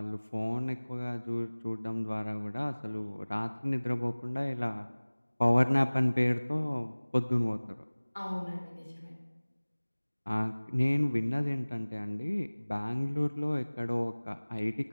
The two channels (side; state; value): both; inverted; correlation -1.00